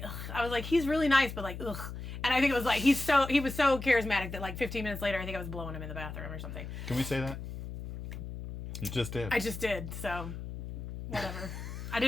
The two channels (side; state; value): left; noise; hum, 8 dB below the sound